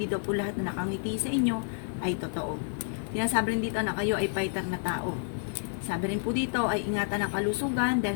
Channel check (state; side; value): silent; right; 58 dB below the other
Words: daw po lahat na nakangiti sa inyo ay totoo. Sabi rin dito na kayo ay fighter na tao. Sabi rin po dito ay ingatan ang kalusugan